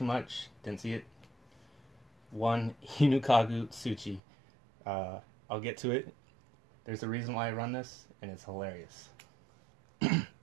much. Didn't see it. 1 Hinukagu Tsuchi. I'll get to it. There's a reason why I run this, and it's hilarious.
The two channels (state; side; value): drops out; left; at 4.2 s